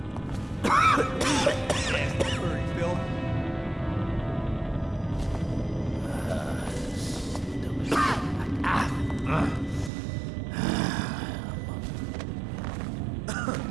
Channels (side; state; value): left; drops out; at 9.9 s